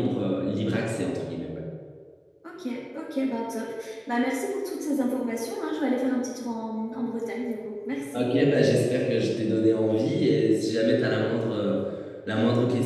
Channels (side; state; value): both; identical; correlation 1.00